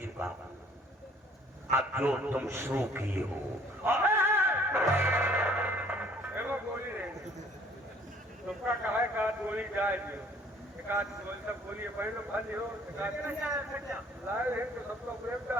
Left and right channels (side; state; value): both; normal; correlation 0.57